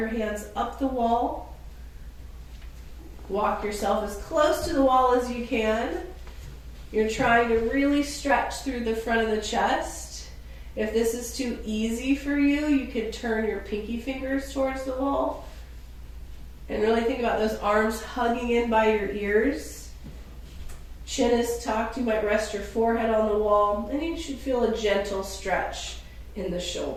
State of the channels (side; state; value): both; identical; correlation 1.00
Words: hands up the wall. Walk yourself as close to the wall as you can. You're trying to really stretch through the front of the chest. If this is too easy for you, you can turn your pinky fingers towards the wall. And really think about those arms hugging in by your ears. Chin is tucked. You might rest your forehead on the wall. And you should feel a gentle stretch in the